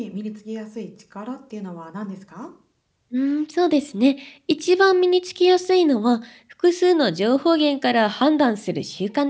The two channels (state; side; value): identical; both; correlation 1.00